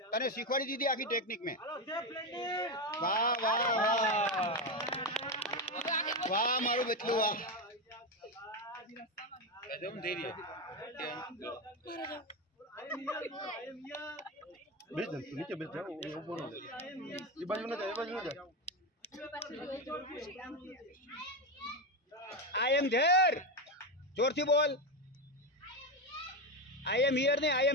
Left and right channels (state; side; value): normal; both; correlation 0.12